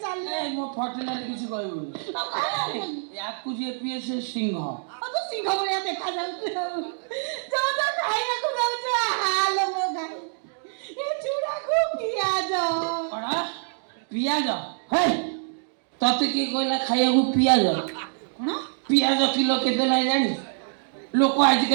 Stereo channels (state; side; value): silent; left; digital silence